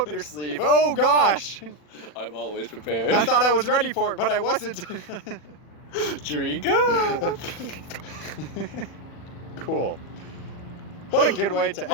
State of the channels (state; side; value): late; right; 40 ms